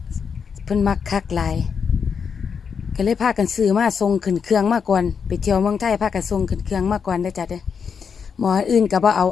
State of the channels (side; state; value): right; quieter; 6.4 dB